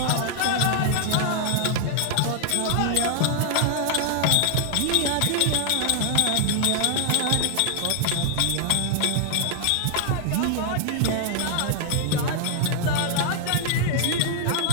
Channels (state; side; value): different; both; correlation -0.01